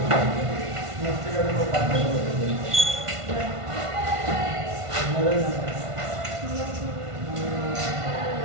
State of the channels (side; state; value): left; late; 1.5 ms